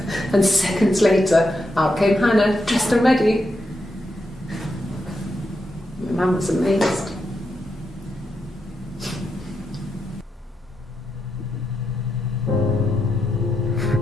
and seconds later, out came Hannah, dressed and ready. Mum was amazed.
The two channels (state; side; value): normal; both; correlation 0.84